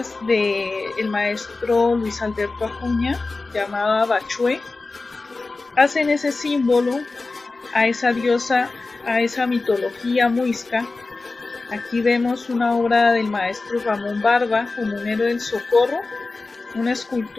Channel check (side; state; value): right; quieter; 3.6 dB